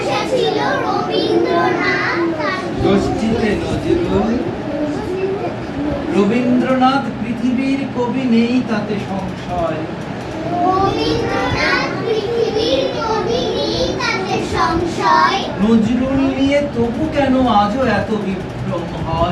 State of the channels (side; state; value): both; identical; correlation 1.00